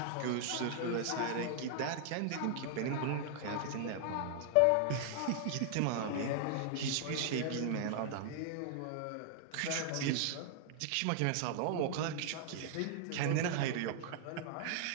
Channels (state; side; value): different; both; correlation 0.00